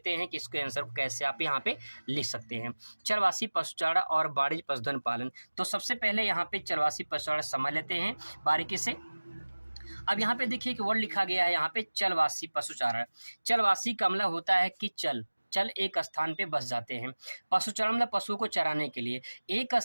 हैं कि इसके आंसर को कैसे आप यहाँ पे लिख सकते हैं। चलवासी पशुचारण और वाणिज्यिक पशुधन पालन, तो सबसे पहले यहाँ पे चलवासी पशुचारण समझ लेते हैं बारीकी से। अब यहाँ पे देखिए कि वर्ड लिखा गया है यहाँ पे चलवासी पशुचारण। चलवासी का मतलब होता है कि चल एक स्थान पे बस जाते हैं। पशुचारण मतलब पशुओं को चराने के लिए, एक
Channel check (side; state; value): both; inverted; correlation -1.00